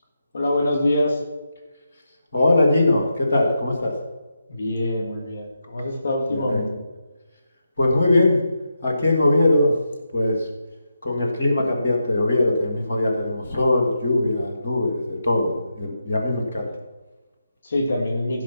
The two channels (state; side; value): inverted; both; correlation -0.86